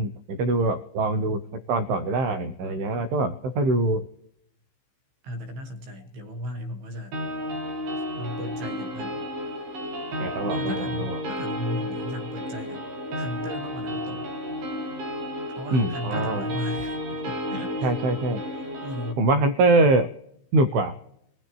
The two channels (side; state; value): left; late; 15 ms